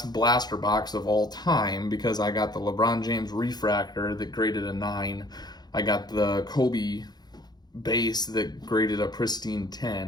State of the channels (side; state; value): right; late; 0.20 ms